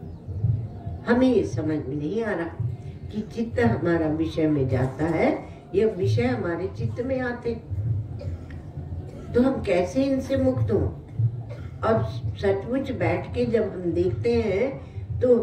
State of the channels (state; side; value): identical; both; correlation 1.00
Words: हमें ये समझ में नहीं आ रहा कि चित्त हमारा विषय में जाता है, यह विषय हमारे चित्त में आते, तो हम कैसे इनसे मुक्त हों? और सचमुच बैठ के जब हम देखते हैं तो